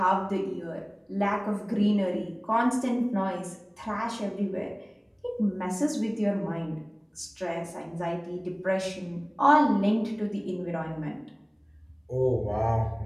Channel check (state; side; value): identical; both; correlation 1.00